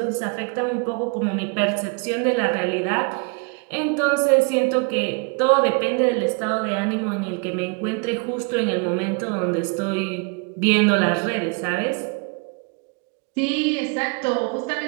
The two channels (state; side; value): quieter; left; 33.4 dB